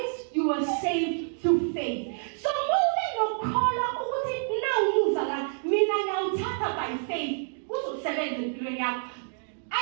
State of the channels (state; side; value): silent; left; digital silence